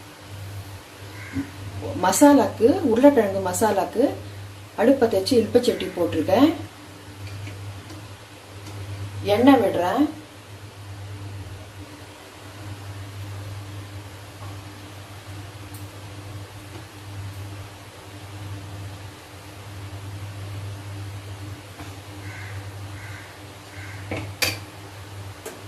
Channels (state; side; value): identical; both; correlation 1.00